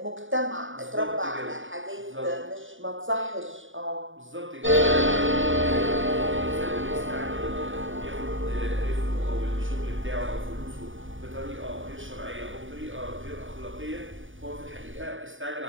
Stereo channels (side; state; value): left; late; 0.57 ms